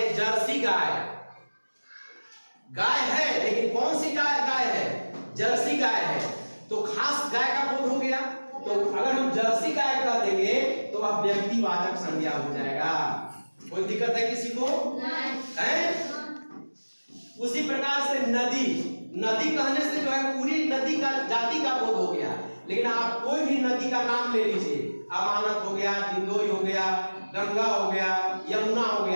जर्सी गाय, गाय है लेकिन कौन सी गाय है? जर्सी गाय है, तो खास गाय का बोध हो गया। तो अगर हम जर्सी गाय कह देंगे तो अब व्यक्तिवाचक संज्ञा हो जाएगा। कोई दिक्कत है किसी को? नहीं। उसी प्रकार से नदी, नदी कहने से जो है पूरी नदी का जाति का बोध हो गया। लेकिन आप कोई भी नदी का नाम ले लीजिए, अमानत हो गया, दिंदोई हो गया, गंगा हो गया, यमुना हो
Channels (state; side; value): inverted; both; correlation -1.00